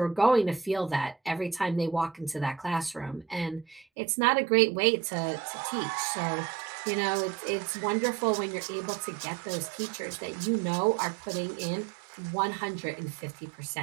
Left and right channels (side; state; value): left; drops out; at 3.9 s